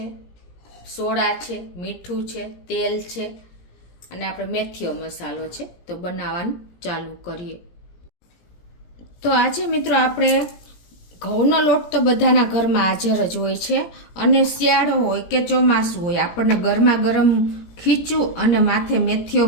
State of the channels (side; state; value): right; late; 17 ms